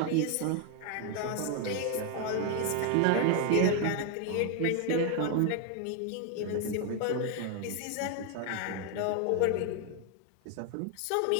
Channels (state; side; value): different; both; correlation 0.01